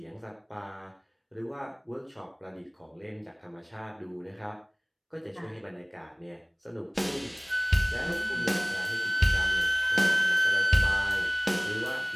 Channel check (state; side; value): identical; both; correlation 1.00